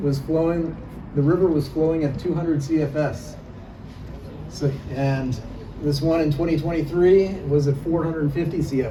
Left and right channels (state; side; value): identical; both; correlation 1.00